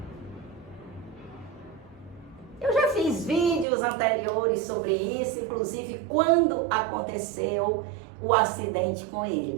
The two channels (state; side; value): drops out; left; at 3.7 s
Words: Eu já fiz vídeos anteriores sobre isso, inclusive quando aconteceu o acidente com